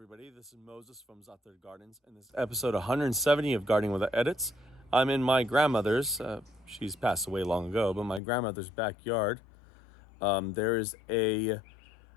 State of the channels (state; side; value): drops out; right; at 8.2 s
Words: everybody. This is Moses from Zother Gardens, and this is episode 170 of Gardening Without Edits. I'm in my grandmother's, she's passed away long ago, but my grandmother's backyard. There is a